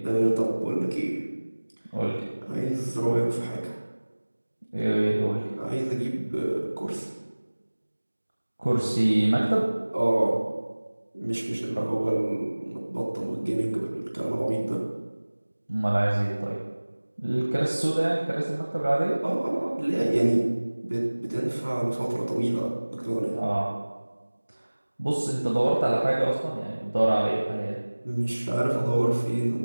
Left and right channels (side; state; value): both; inverted; correlation -1.00